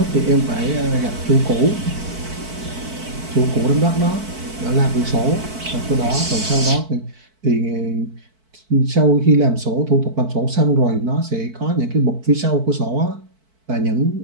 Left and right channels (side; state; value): left; late; 4.5 ms